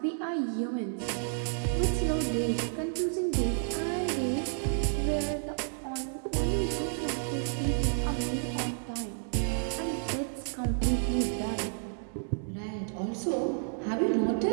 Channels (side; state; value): left; silent; digital silence